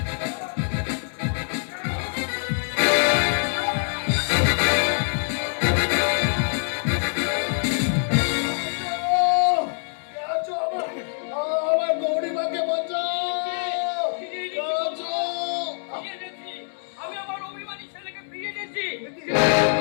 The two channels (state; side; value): silent; right; digital silence